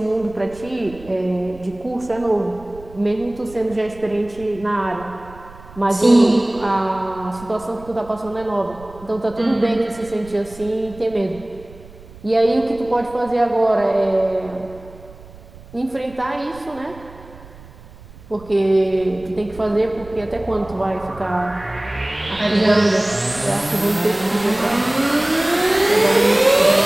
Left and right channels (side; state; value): right; noise; rumble, 20 dB below the sound